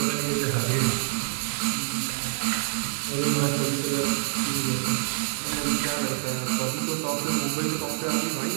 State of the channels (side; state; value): left; silent; 61 dB below the other